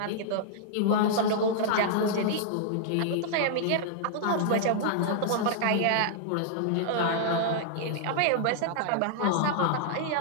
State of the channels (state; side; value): different; both; correlation -0.01